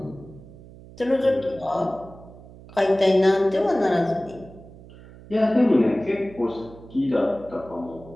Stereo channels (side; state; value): right; noise; hum, 19 dB below the sound